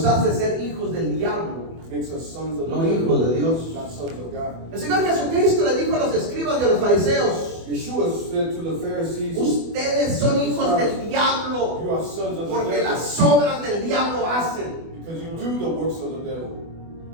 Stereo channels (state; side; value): late; left; 24 ms